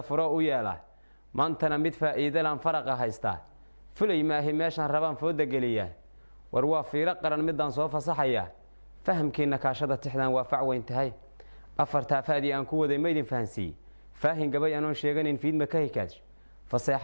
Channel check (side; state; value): both; inverted; correlation -1.00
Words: furo u yeelaa maantana mid faa'iido laan faraqa haystaa fulay maahi meeshan rabaan fooda geliyaa war waa fiiro qaran midaan soo fasaxaya fahamkiina kaashada tixdan waa fac weyn tahay afarta faadi aan ku waday meedin fahansi faahin gabay aan sheeganin fiidma ka hikaaj